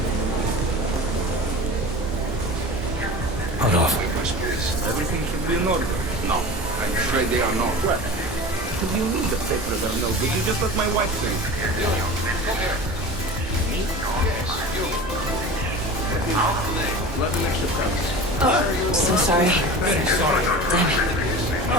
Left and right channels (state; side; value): normal; both; correlation 0.34